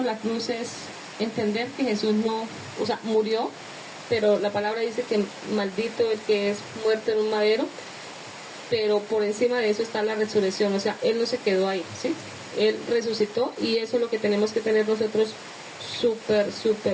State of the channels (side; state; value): both; identical; correlation 1.00